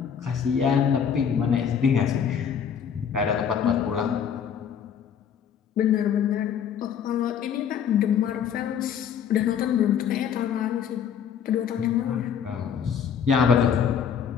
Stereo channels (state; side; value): quieter; right; 7.9 dB